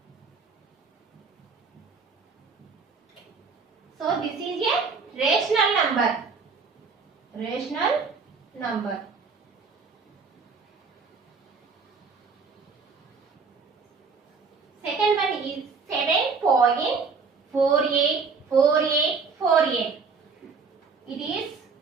So this is a rational number. Rational number. Second one is 7.484848. It is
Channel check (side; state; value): left; quieter; 4.9 dB